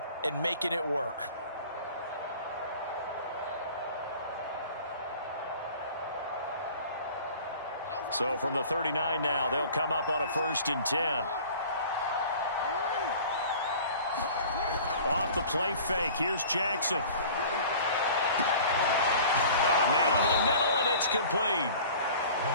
and making it work. So from the 39 now, they'll come up on a 1st and 10. Off the play fake, here's Jackson. Got a man over the middle, and it's complete.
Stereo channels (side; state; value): both; inverted; correlation -0.45